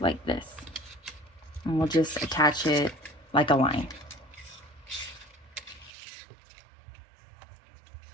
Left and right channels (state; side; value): drops out; left; at 5.9 s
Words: this. And we'll just attach it like a line.